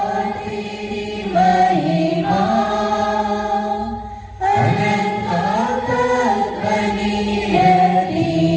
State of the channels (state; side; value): identical; both; correlation 1.00